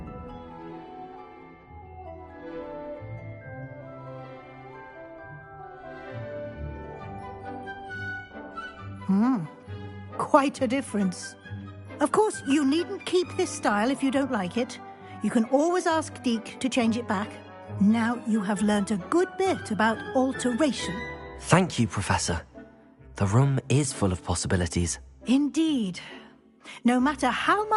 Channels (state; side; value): identical; both; correlation 1.00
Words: Quite a difference. Of course, you needn't keep this style if you don't like it. You can always ask Deke to change it back. Now you have learnt a good bit about alteration. Thank you, Professor. The room is full of possibilities. Indeed. No matter how